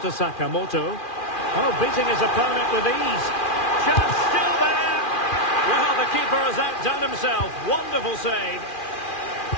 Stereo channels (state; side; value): late; right; 2.4 ms